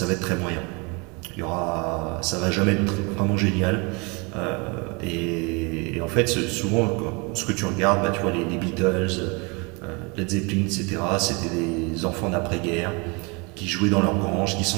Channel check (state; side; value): quieter; left; 29.9 dB